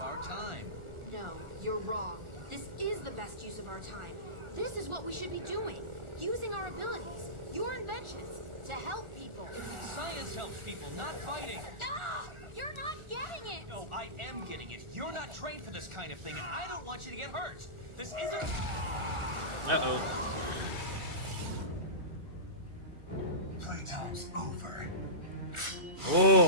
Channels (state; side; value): late; left; 1.4 ms